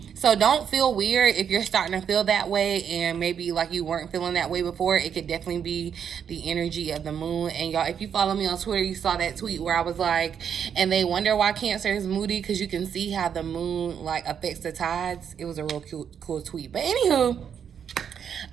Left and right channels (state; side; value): quieter; left; 7.9 dB